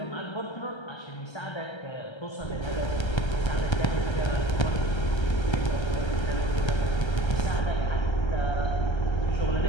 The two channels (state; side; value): late; right; 1.3 ms